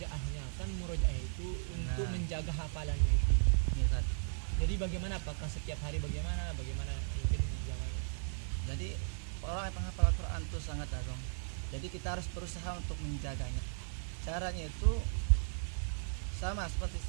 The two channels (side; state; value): left; silent; digital silence